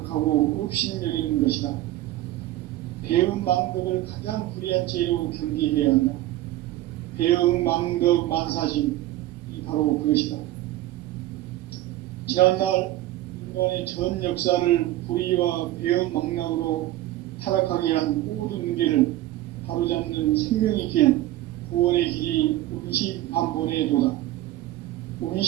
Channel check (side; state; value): left; quieter; 15.3 dB